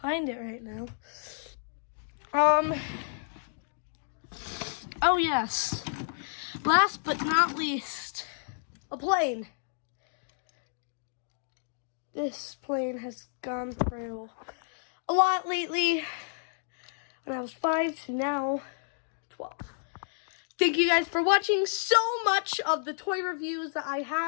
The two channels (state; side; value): silent; right; digital silence